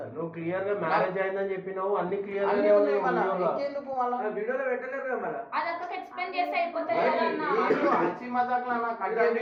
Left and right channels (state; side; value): identical; both; correlation 1.00